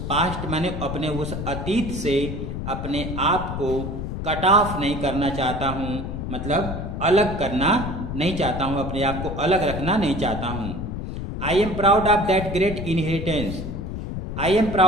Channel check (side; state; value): left; noise; rumble, 5 dB below the sound